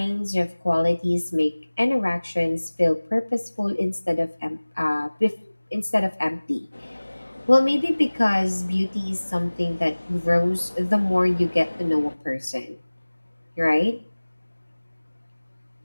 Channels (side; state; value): both; inverted; correlation -1.00